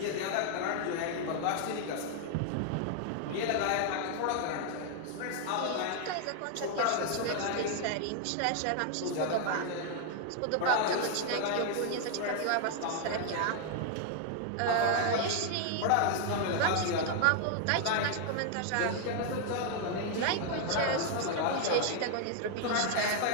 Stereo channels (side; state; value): both; different; correlation 0.00